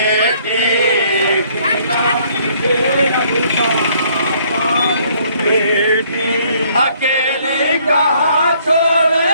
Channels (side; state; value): both; inverted; correlation -0.63